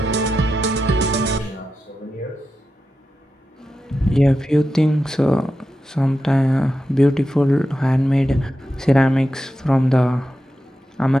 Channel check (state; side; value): normal; both; correlation 0.90